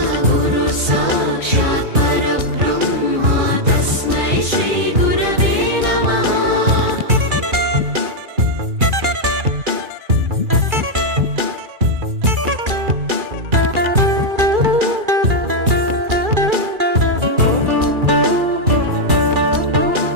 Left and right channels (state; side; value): late; left; 2.4 ms